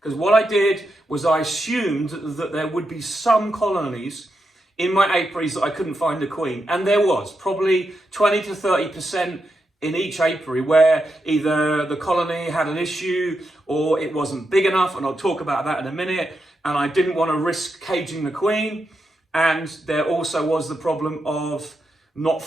Because what I did was I assumed that there would be some colonies in my apiaries that I couldn't find a queen. And there was probably 20 to 30% in each apiary where either the colony had an issue or it wasn't big enough, and I'll talk about that in a minute, and I didn't want to risk caging the queen. And there also was the problem of not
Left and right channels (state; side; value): normal; both; correlation 0.85